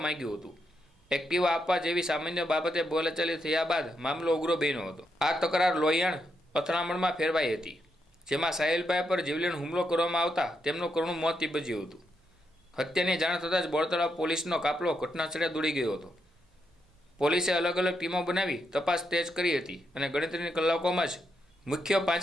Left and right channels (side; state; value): both; normal; correlation 0.81